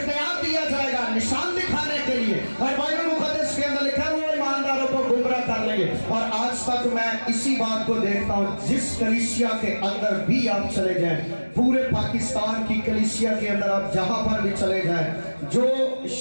दिया जाएगा निशान दिखाने के लिए, और बाइबल मुकद्दस के अंदर लिखा है वो ईमानदारों को गुमराह कर लेंगे। और आज तक मैं इसी बात को देखता हूँ, जिस कलीसिया के अंदर भी आप चले जाएं, पूरे पाकिस्तान की कलीसिया के अंदर आप जहां पर भी चले जाएं, जो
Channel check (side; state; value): both; inverted; correlation -1.00